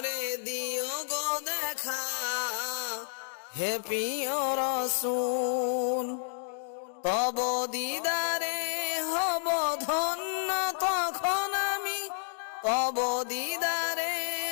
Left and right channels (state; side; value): silent; right; digital silence